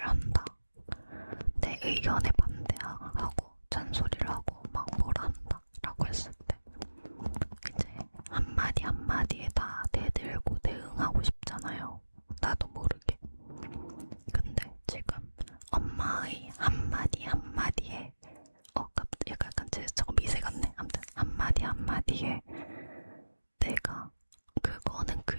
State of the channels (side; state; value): both; inverted; correlation -1.00